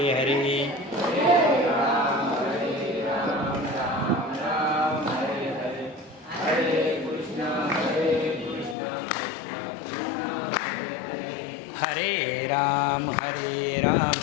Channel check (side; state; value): right; drops out; at 8.8 s